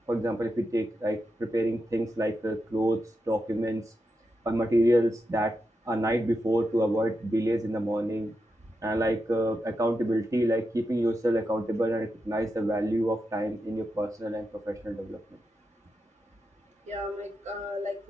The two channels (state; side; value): normal; both; correlation 0.87